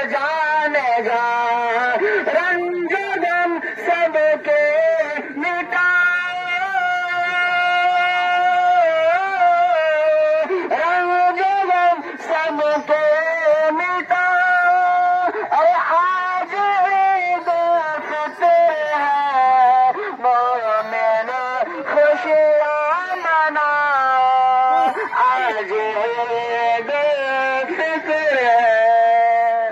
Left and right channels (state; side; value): identical; both; correlation 1.00